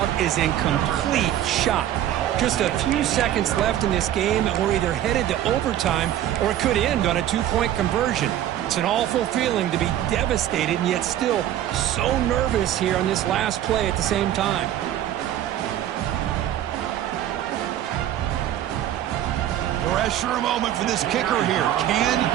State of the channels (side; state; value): left; quieter; 11.9 dB